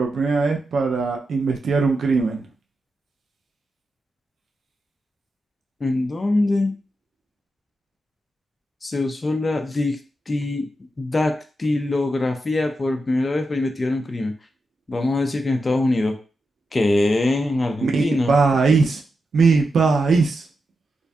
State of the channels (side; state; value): both; normal; correlation 0.87